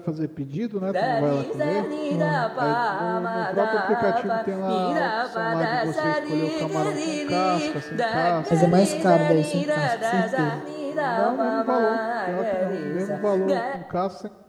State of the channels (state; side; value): identical; both; correlation 1.00